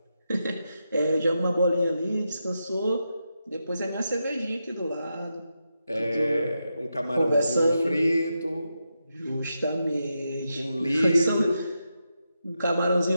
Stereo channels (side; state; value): both; inverted; correlation -0.86